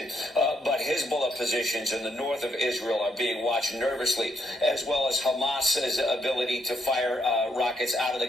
but Hezbollah positions in the north of Israel are being watched nervously, as well as Hamas's ability to fire rockets out of the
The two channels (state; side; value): normal; both; correlation 0.74